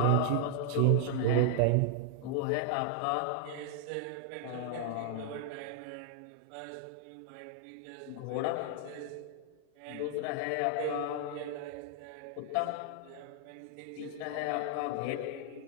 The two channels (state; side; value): different; both; correlation 0.00